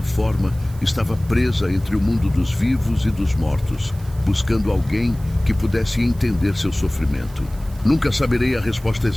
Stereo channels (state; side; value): noise; right; hiss, 24 dB below the sound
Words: forma, estava presa entre o mundo dos vivos e dos mortos, buscando alguém que pudesse entender seu sofrimento. Nunca saberei a resposta